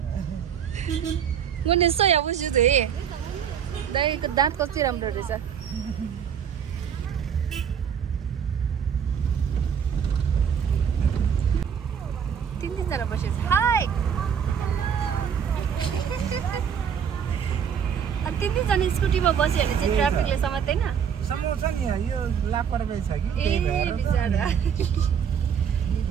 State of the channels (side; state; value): left; quieter; 7.9 dB